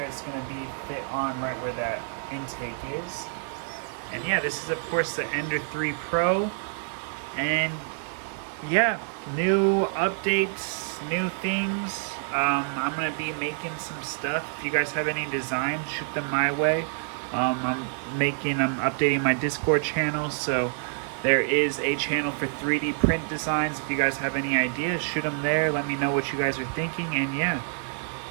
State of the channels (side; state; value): left; silent; digital silence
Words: it's going to be fit on right where that intake is. And yeah, this is of course the Ender 3 Pro. And yeah, new updates, new things. I'm going to be making some stuff. If you guys have any designs, shoot them my way. I'm updating my Discord channel, so there is a channel for 3D print designs. If you guys have any ideas, shoot them there. Let me know what you guys are thinking, and yeah,